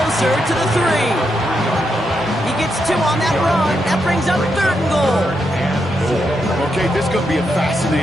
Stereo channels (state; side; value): normal; both; correlation 0.82